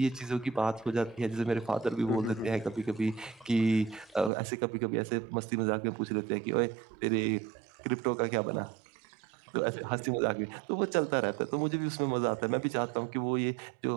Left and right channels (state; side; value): drops out; left; at 4.3 s